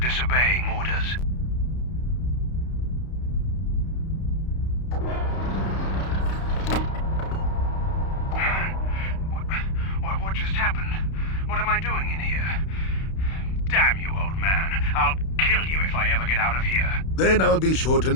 orders. What just happened? What am I doing in here? Damn you, old man. I'll kill you if I ever get out of here. Then I'll be sure to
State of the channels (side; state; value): right; late; 31 ms